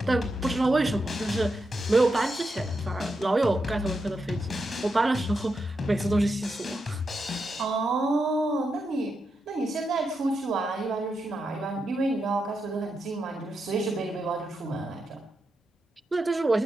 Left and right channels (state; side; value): normal; both; correlation 0.86